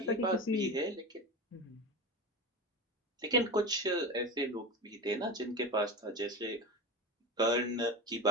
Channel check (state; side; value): normal; both; correlation 0.25